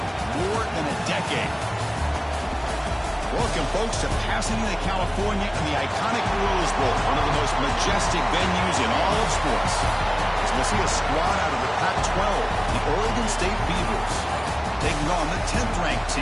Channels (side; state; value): both; identical; correlation 1.00